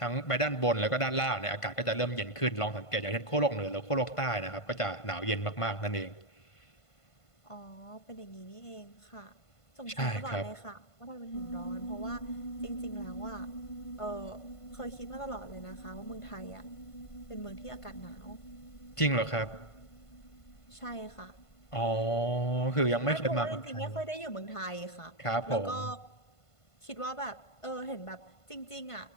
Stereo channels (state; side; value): late; right; 1.5 ms